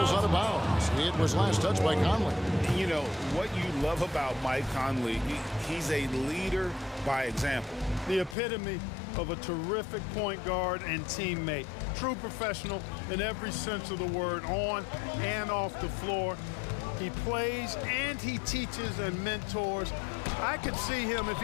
out of bounds. It was last touched by Conley. You know, what you love about Mike Conley, he's a leader by example. The epitome of a terrific point guard and teammate. True professional in every sense of the word, on and off the floor. He plays and he teaches and mentors. I could see him, if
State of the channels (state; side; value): drops out; right; at 8.3 s